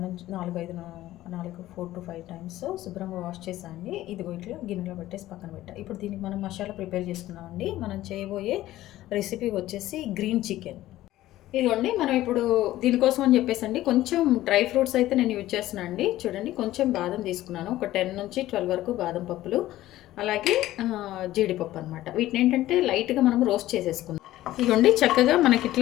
నుంచి 4 to 5 టైమ్స్ శుభ్రంగా వాష్ చేసాండి. ఇదిగో ఇట్లా గిన్నెలో పెట్టేసి పక్కన పెట్టా. ఇప్పుడు దీనికి మనం మసాలా ప్రిపేర్ చేసుకున్నామండి. మనం చేయబోయే రెసిపీ వచ్చేసి గ్రీన్ చికెన్. ఇదిగోండి, మనం ఇప్పుడు దీనికోసం అని చెప్పేసండి కొంచెం డ్రై ఫ్రూట్స్ అయితే నేను యూజ్ చేస్తున్నాను అండి. చూడండి, కొంచెం బాదం తీసుకున్నాను, ఒక 10 నుంచి 12 వరకు బాదం పప్పులు, అలాగే జీడిపప్పు అనమాట. వీటిని ఏంటంటే లైట్గా మనం రోస్ట్ చేసేసుకుందాం. ఇదిగోండి, చక్కగా మనకి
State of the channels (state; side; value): quieter; right; 15.1 dB